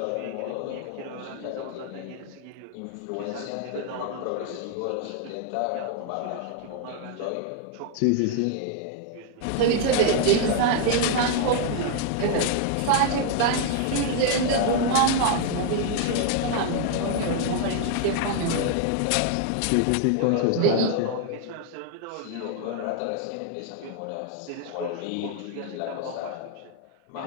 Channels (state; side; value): different; both; correlation 0.00